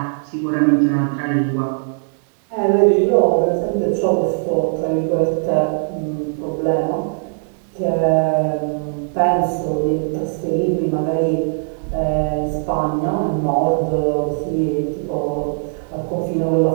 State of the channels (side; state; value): left; silent; digital silence